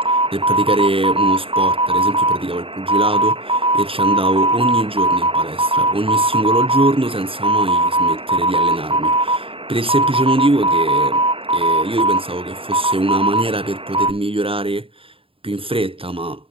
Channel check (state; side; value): late; left; 0.27 ms